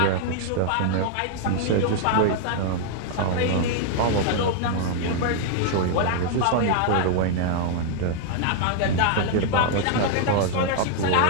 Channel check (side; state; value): both; different; correlation 0.00